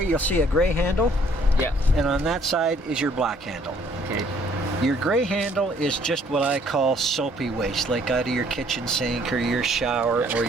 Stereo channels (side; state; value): both; normal; correlation 0.62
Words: you'll see a gray handle. Yeah. And on that side is your black handle. Okay. Your gray handle is just what I call soapy waste, like out of your kitchen sink or your shower or